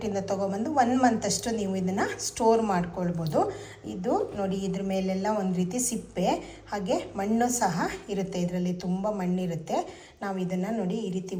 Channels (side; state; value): both; identical; correlation 1.00